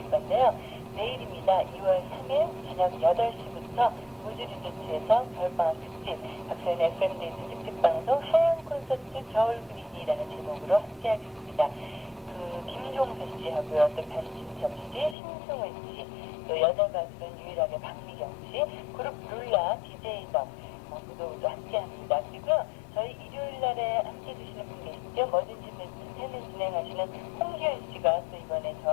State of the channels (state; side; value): drops out; right; at 15.2 s